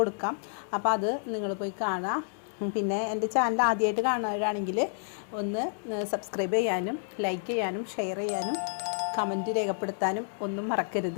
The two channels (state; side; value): silent; right; 58 dB below the other